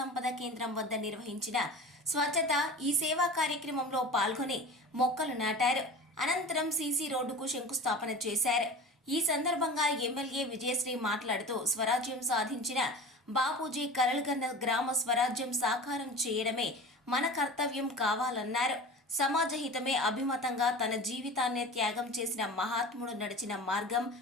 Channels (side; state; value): both; normal; correlation 0.35